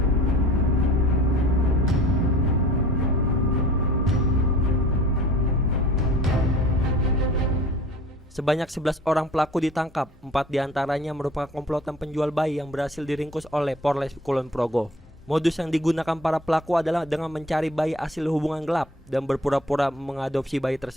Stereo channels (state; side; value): normal; both; correlation 0.46